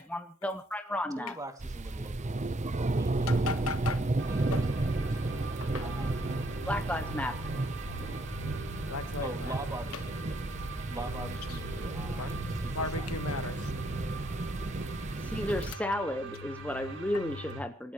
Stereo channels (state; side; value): normal; both; correlation 0.71